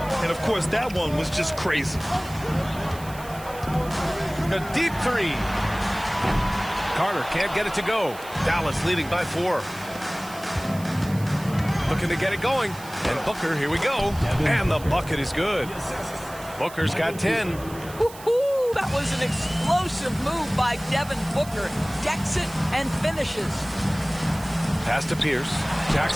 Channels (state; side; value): noise; right; hiss, 17 dB below the sound